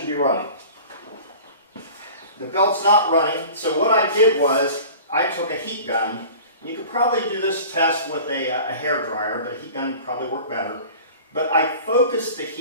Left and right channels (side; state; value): both; inverted; correlation -0.41